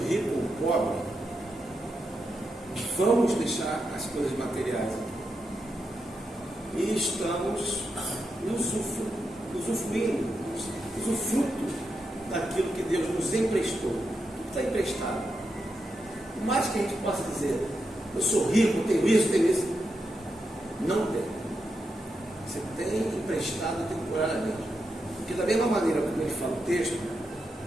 rico ou pobre, vamos deixar as coisas materiais aqui. E estamos usufruto daquilo que Deus nos emprestou. Tudo está emprestado. Por mais que a gente possa dizer, eu sou rico, tenho isso, não tem. Você tem emprestado temporariamente. Porque da mesma maneira como ele fala o texto,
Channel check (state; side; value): normal; both; correlation 0.85